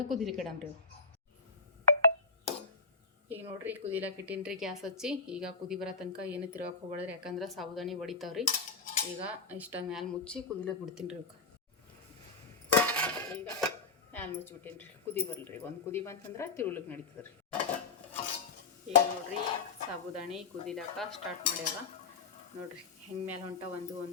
ಕುದಿಲಿಕ್ಕೆ ಇಡಮ್ರಿ. ಈಗ ನೋಡ್ರಿ ಕುದಿಲಕ್ಕೆ ಇಟ್ಟೀನಿ ರೀ ಗ್ಯಾಸ್ ಹಚ್ಚಿ. ಈಗ ಕುದಿ ಬರೋ ತನಕ ಏನು ತಿರ್ಗಕ್ಕೆ ಹೋಗ್ಬೇಡ್ರಿ. ಯಾಕಂದ್ರೆ ಸಾಬುದಾನಿ ಹೊಡಿತಾವ್ರಿ. ಈಗ ಇಷ್ಟ ಮ್ಯಾಲೆ ಮುಚ್ಚಿ ಕುದಿಲಕ್ಕೆ ಬಿಡ್ತೀನಿ ರೀ. ಈಗ ಮ್ಯಾಲೆ ಮುಚ್ಚಿಬಿಟ್ಟೀನಿ ರೀ. ಕುದಿ ಬರಲ್ರಿ. ಒಂದು ಕುದಿ ಬಂತಂದ್ರೆ ತಿರುಗ್ಲಿಕ್ಕೆ ನಡೀತದೆ ರೀ. ಈಗ ನೋಡ್ರಿ ಸಾಬುದಾನಿ ಕುದಿಲಕ್ಕೆ ಸ್ಟಾರ್ಟ್ ಮಾಡ್ಯಾವ ನೋಡ್ರಿ. ಹೆಂಗೆ ಮ್ಯಾಲೆ ಹೊಂಟ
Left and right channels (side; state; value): right; quieter; 4.5 dB